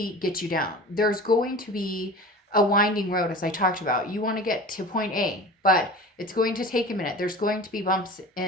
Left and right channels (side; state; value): both; normal; correlation 0.37